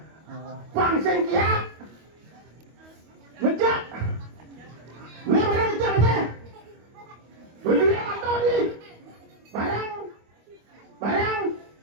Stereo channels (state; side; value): late; left; 25 ms